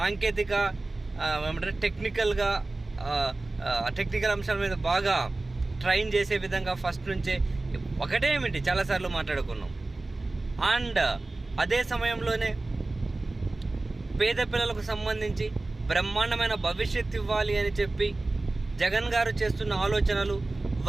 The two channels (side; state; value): left; quieter; 3.1 dB